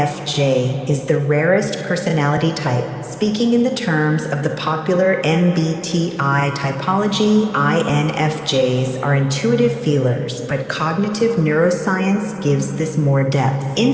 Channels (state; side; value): identical; both; correlation 1.00